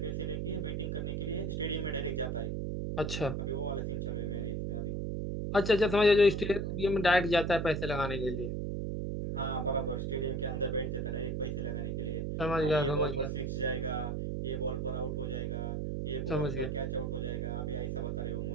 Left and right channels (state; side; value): noise; right; hum, 1 dB below the sound